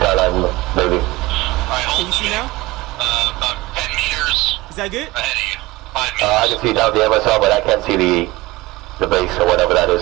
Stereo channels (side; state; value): left; quieter; 20.2 dB